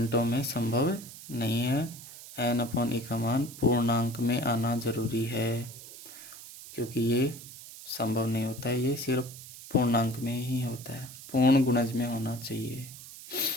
में संभव नहीं है। N अपॉन E का मान पूर्णांक में आना जरूरी है, क्योंकि ये संभव नहीं होता है, ये सिर्फ पूर्णांक में ही होता है, पूर्ण गुणज में होना चाहिए।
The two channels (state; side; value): noise; right; hiss, 15 dB below the sound